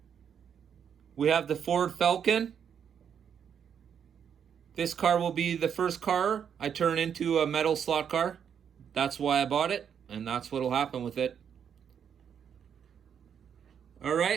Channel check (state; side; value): quieter; left; 7.9 dB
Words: we have the Ford Falcon. This car will be the first car I turn into a metal slot car. That's why I bought it, and that's what will happen with it. All